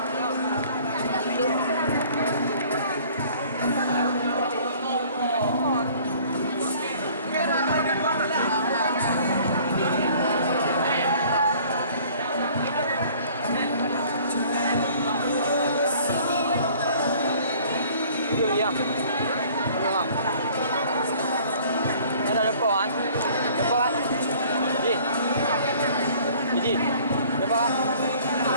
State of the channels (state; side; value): inverted; both; correlation -0.53